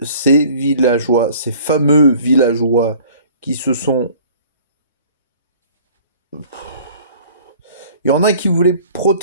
ces villageois, ces fameux villageois qui se sont... Il y en a qui voulaient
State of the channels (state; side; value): inverted; both; correlation -0.50